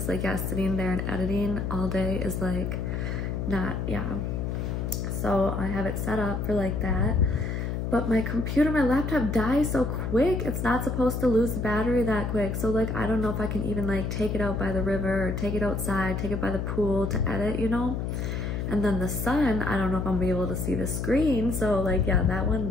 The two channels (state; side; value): noise; left; hum, 2 dB below the sound